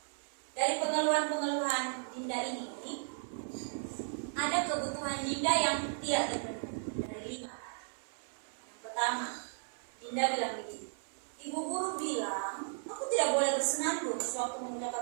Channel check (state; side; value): silent; left; 54 dB below the other